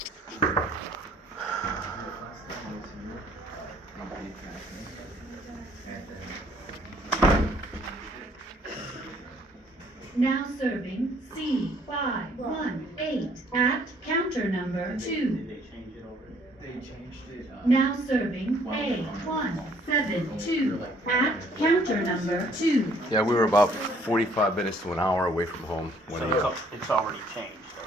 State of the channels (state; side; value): normal; both; correlation 0.62